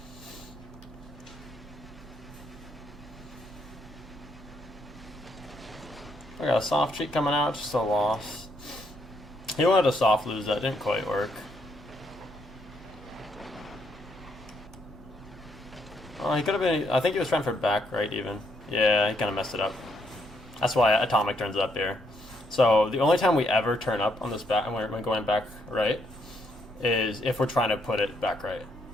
I got a soft cheat coming out, just a loss. He wanted a soft lose, that didn't quite work. Oh, he could have been, I think he was trying for back right even. Yeah, he kind of messed it up. That's why Atomic turns up here. So the only time we ever turn up on this back, when we're going back right, is if we're trying to put it back right.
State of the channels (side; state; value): both; normal; correlation 0.74